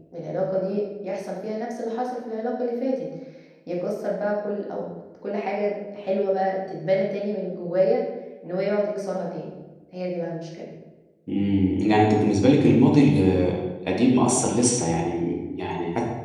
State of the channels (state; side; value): identical; both; correlation 1.00